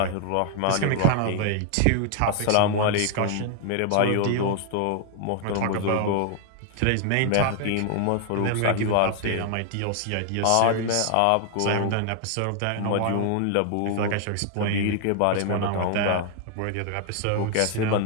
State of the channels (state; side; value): different; both; correlation 0.00